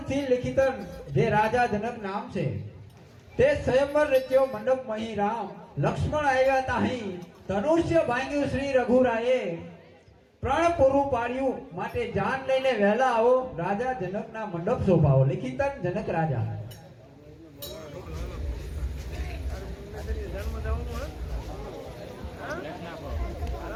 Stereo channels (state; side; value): identical; both; correlation 1.00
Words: લિખિતન જે રાજા જનક નામ છે, તે સ્વયંવર રચ્યો મંડપ મહી રામ લક્ષ્મણ આવ્યા તાહી ધનુષ્ય ભાંગ્યું શ્રી રઘુરાયે પ્રણ પૂરું પાડ્યું માટે જાન લઈને વહેલા આવો રાજા જનકના મંડપ શોભાવો. લિખિતન જનક રાજા.